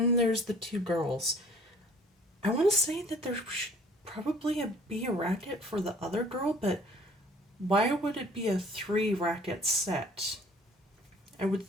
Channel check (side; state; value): both; normal; correlation 0.53